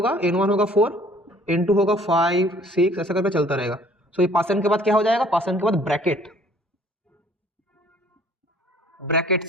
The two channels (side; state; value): both; normal; correlation 0.56